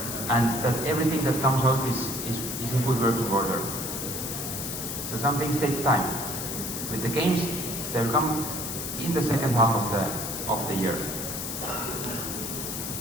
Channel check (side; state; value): left; noise; hiss, 5 dB below the sound